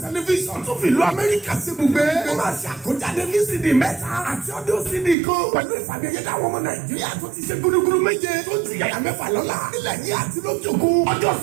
tẹlifíṣàn tó fi ìlú Amẹ́ríkà sí ibùgbé ó máa ṣe àkójáde VCD mẹ́ta àti ọdún CD kan pẹ̀lú ìfàmìyẹ́dá àwọn ọmọ Nàìjíríà tó ti ṣe gúdúgúdú méje tó ti yàyà mẹ́fà lọ́la nílẹ̀ yìí àti lókè òkun ọjọ́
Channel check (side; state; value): left; drops out; at 5.2 s